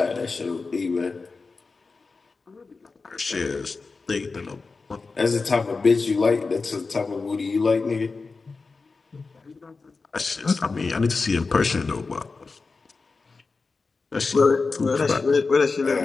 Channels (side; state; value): right; quieter; 4.2 dB